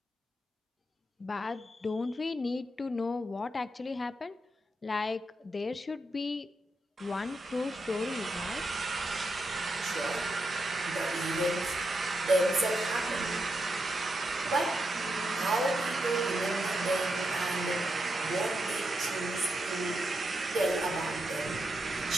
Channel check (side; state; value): both; normal; correlation 0.84